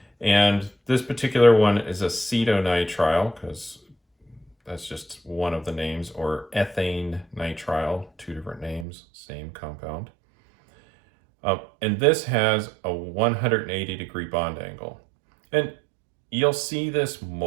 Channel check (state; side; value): drops out; left; at 8.8 s